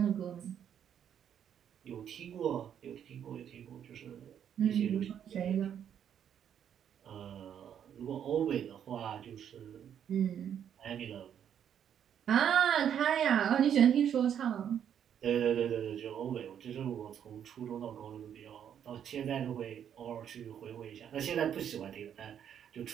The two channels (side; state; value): left; quieter; 9.1 dB